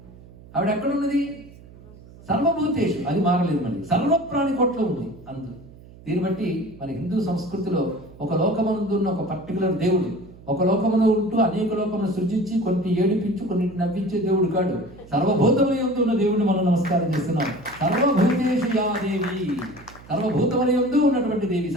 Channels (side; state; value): right; noise; hum, 21 dB below the sound